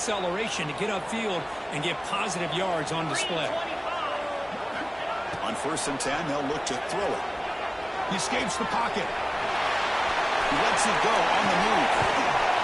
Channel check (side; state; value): both; identical; correlation 1.00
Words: to get upfield and get positive yards on display. On 1st and 10, they'll look to throw it. He escapes the pocket. He lets it go on the move.